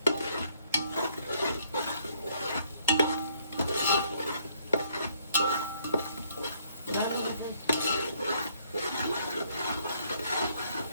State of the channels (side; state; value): both; inverted; correlation -0.68